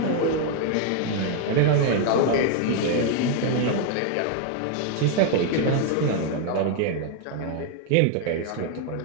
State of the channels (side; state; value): both; different; correlation 0.00